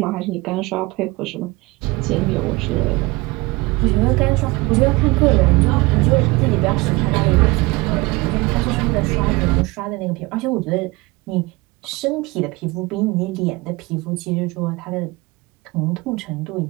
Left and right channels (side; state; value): left; quieter; 23.2 dB